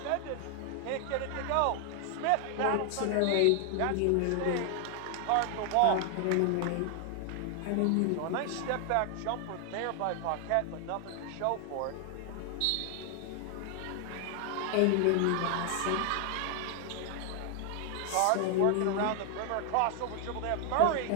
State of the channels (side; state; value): both; different; correlation 0.00